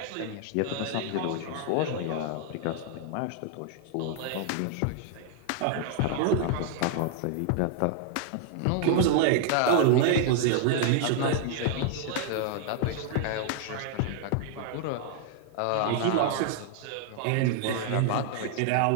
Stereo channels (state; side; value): different; both; correlation 0.00